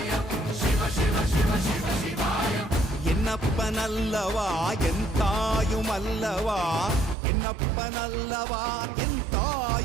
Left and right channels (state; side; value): drops out; left; at 7.2 s